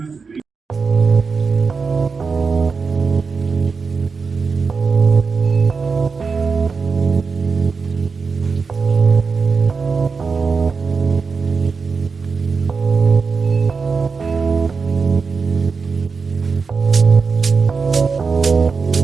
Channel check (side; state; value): left; quieter; 5.0 dB